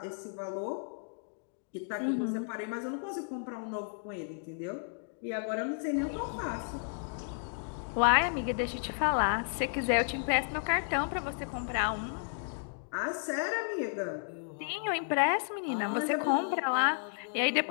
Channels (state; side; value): silent; right; digital silence